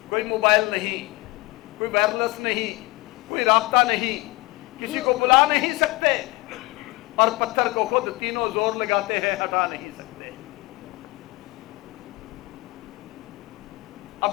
کوئی موبائل نہیں, کوئی وائرلیس نہیں, کوئی رابطہ نہیں, کسی کو بلا نہیں سکتے, اور پتھر کو خود تینوں زور لگاتے ہیں, ہٹا نہیں سکتے.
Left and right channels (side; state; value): right; quieter; 22.3 dB